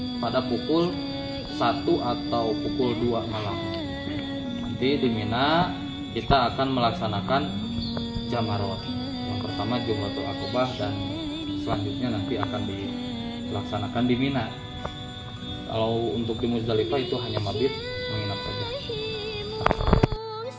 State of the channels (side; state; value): both; identical; correlation 1.00